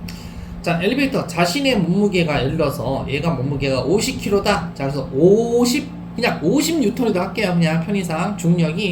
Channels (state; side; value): identical; both; correlation 1.00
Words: 자, 엘리베이터 자신의 몸무게가, 예를 들어서 얘가 몸무게가 50kg다. 자, 그래서 50 그냥 50N이라고 할게요. 그냥 편의상